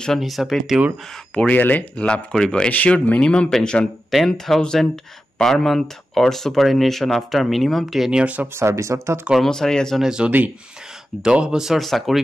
হিচাপে তেওঁৰ পৰিয়ালে লাভ কৰিব। এচিউৰ্ড minimum pension 10,000 per month or superannuation after minimum 10 years of service. অৰ্থাৎ কৰ্মচাৰী এজনে যদি 10 বছৰ চাকৰি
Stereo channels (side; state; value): both; normal; correlation 0.92